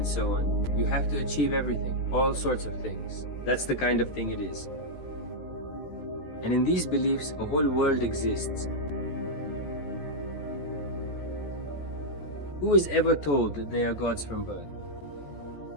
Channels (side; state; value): right; late; 14 ms